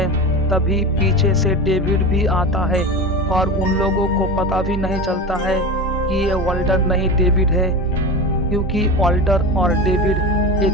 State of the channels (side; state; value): both; normal; correlation 0.27